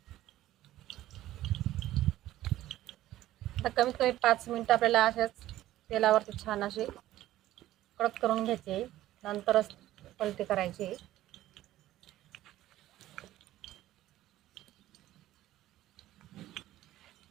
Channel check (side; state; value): left; quieter; 14.5 dB